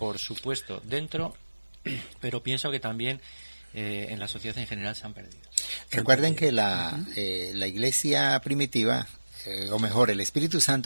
supuesto, dentro, pero pienso que también en la sociedad en general se han perdido. Recuerden que la iglesia primitiva, o mejor, el Espíritu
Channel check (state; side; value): inverted; both; correlation -1.00